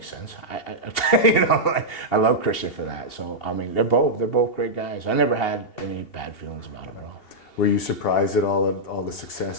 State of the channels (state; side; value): late; right; 2.8 ms